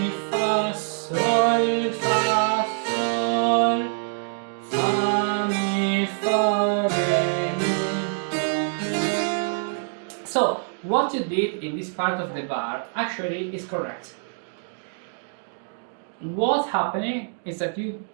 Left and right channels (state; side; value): silent; left; digital silence